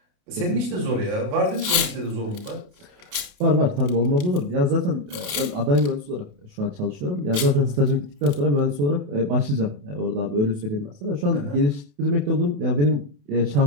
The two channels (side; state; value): left; late; 28 ms